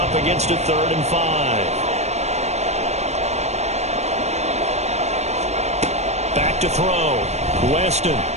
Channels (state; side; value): late; left; 0.32 ms